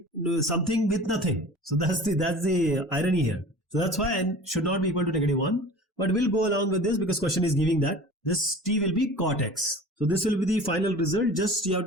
with nothing? So that's the irony here. So that's why n should not be equal to negative 1. But we'll go along with this because question is giving that. This t will be cot x. So this will be the final result. Just you have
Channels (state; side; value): normal; both; correlation 0.40